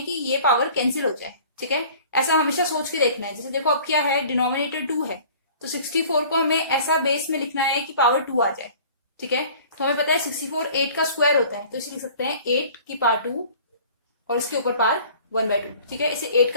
कि ये पावर कैंसिल हो जाए। ठीक है, ऐसा हमेशा सोच के देखना है। जैसे देखो अब क्या है, डिनोमिनेटर 2 है तो 64 को हमें ऐसा बेस में लिखना है कि पावर 2 आ जाए। ठीक है, तो हमें पता है 64 8 का स्क्वायर होता है, तो इसे लिख सकते हैं 8 की पावर 2 और इसके ऊपर पावर 1/2। ठीक है, इसे 8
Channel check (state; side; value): inverted; both; correlation -0.48